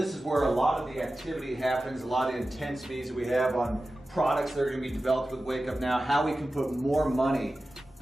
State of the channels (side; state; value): both; normal; correlation 0.94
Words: is where a lot of the activity happens, a lot of intense meetings that we have on products that are going to be developed with Wake Up Now, how we can put more money